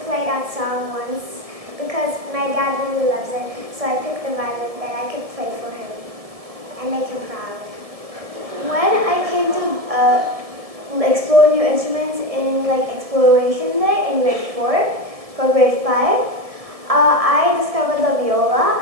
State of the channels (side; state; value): left; late; 1.7 ms